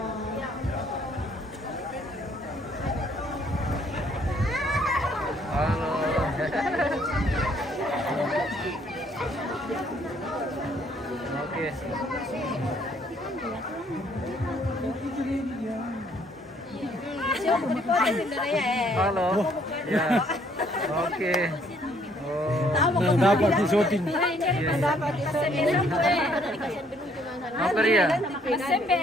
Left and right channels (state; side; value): normal; both; correlation 0.65